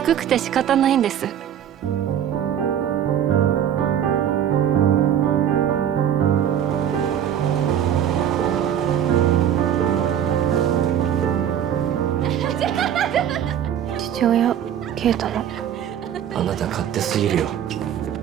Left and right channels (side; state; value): left; quieter; 9.7 dB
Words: くて仕方ないんです。父親啓太の。あなた勝手すぎるよ。